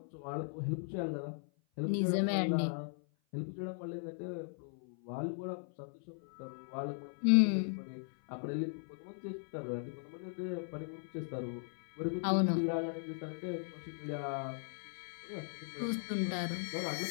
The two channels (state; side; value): silent; right; 53 dB below the other